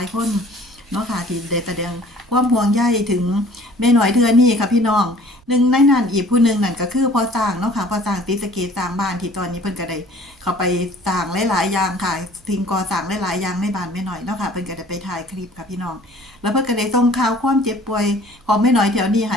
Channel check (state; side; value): noise; right; rumble, 29 dB below the sound